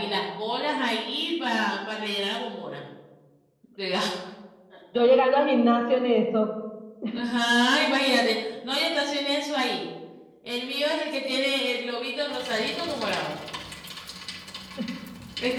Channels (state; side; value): identical; both; correlation 1.00